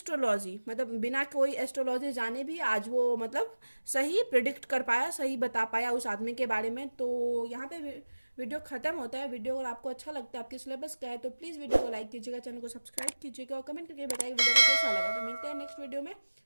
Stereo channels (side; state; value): both; inverted; correlation -1.00